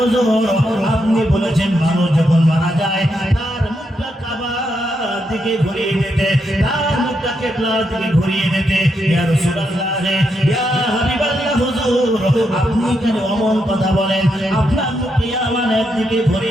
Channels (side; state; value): both; normal; correlation 0.81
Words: আপনি বলেছেন মানুষ যখন মারা যায় তার মুখটা কাবার দিকে ঘুরিয়ে দিতে, তার মুখটা কিবলার দিকে ঘুরিয়ে দিতে। ইয়া রাসূলুল্লাহ, ইয়া হাবিবাল্লাহ, হুজুর, আপনি কেন অমন কথা বলেন? আপনার মুখ ইয়ামানের দিকে